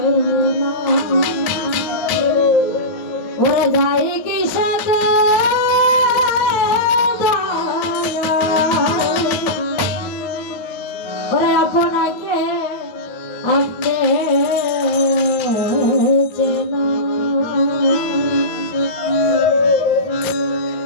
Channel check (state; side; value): late; right; 9.2 ms